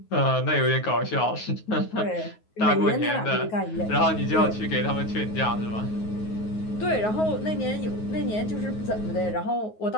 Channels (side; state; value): right; late; 9.4 ms